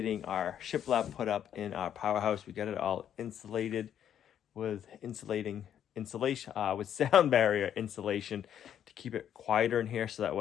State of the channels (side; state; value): right; quieter; 9.7 dB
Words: our shiplap put up in our powerhouse. We got it all insulated with insulation with sound barrier insulation to keep it quieter in here, so that